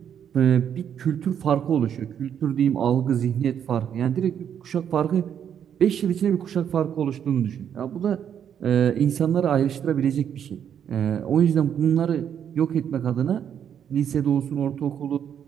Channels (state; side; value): quieter; left; 8.8 dB